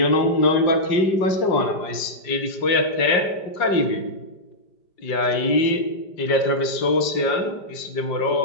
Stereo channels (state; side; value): late; right; 5.1 ms